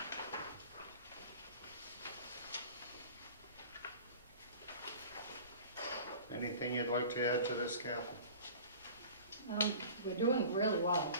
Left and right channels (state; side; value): inverted; both; correlation -0.41